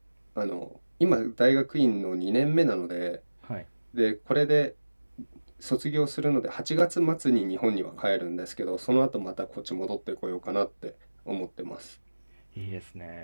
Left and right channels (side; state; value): both; inverted; correlation -1.00